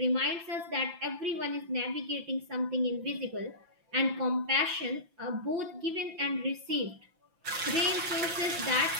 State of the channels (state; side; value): late; left; 6.0 ms